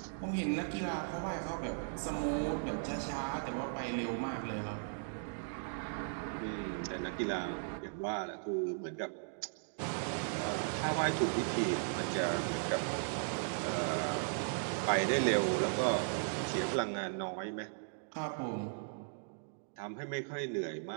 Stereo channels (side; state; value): left; silent; digital silence